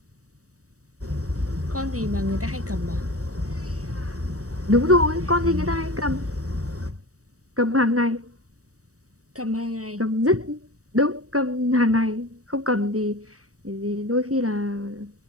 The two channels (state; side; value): late; left; 0.66 ms